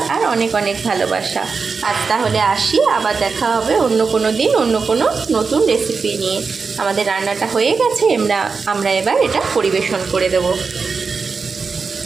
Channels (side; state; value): left; quieter; 4.9 dB